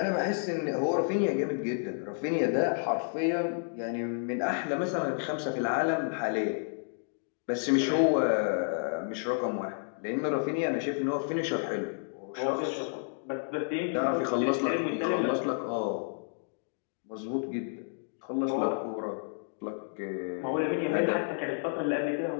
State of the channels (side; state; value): right; silent; digital silence